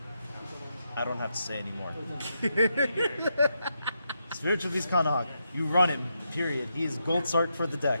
I don't have to say anymore. Spiritual Beast Kanahak, you run him, period. He is gold Sark for the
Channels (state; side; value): inverted; both; correlation -0.83